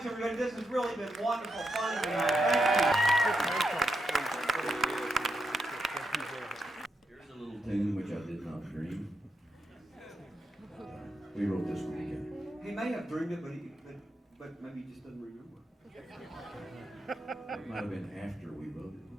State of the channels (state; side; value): normal; both; correlation 0.83